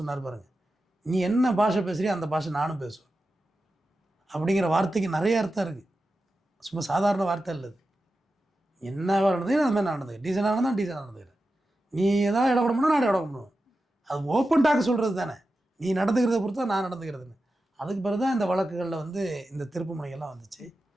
பாருங்கள், நீ என்ன பாஷை பேசுறியோ அந்த பாஷை நானும் பேசுவேன் அப்படிங்கிற வார்த்தைக்கு நிறைய அர்த்தம் இருக்குது. சும்மா சாதாரண வார்த்தை இல்லை. என்ன நடந்தது அது மாதிரி நடந்துக்கிறேன், டீசனாக நடந்தால் டீசனாக நடந்துக்கிறேன். நீ எதாவது இடம் கொடுக்கணும், நான் இடம் கொடுக்கணும். அது ஓப்பன் டாக் சொல்கிறது தானே, நீ நடந்துக்கிறத பொறுத்து தான் நான் நடந்துக்கிறதுன்னு. அதுக்கு பிறகு தான் இந்த வழக்குகளில் வந்து இந்த திருப்பு முனைகள்லாம் வந்துச்சு.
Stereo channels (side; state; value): both; normal; correlation 0.91